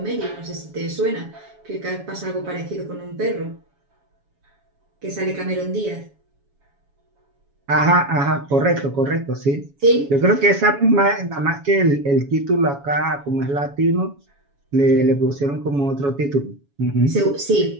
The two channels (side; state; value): left; late; 7.2 ms